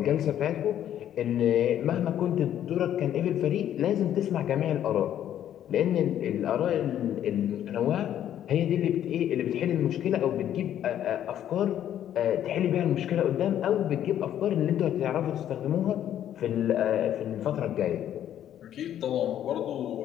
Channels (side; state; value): right; quieter; 10.9 dB